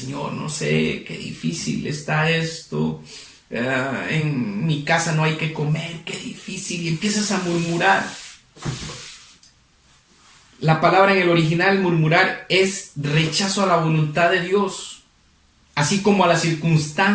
no sé, qué difícil está esto. En mi casa no hay que comer, qué difícil. Y empiezas a murmurar. La palabra en el original, murmurar, es rechazo a la voluntad de Dios, así como a las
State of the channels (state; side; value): identical; both; correlation 1.00